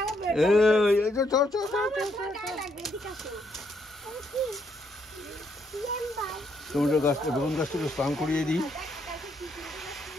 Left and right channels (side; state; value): both; normal; correlation 0.74